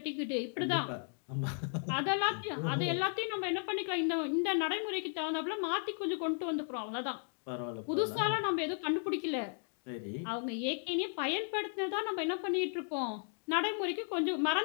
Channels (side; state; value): right; silent; 54 dB below the other